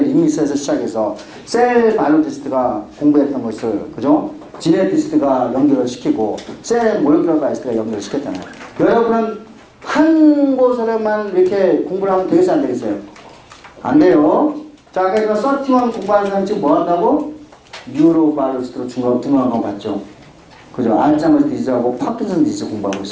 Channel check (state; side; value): identical; both; correlation 1.00